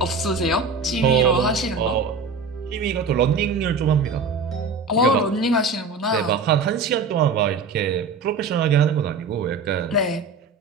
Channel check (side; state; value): left; quieter; 4.4 dB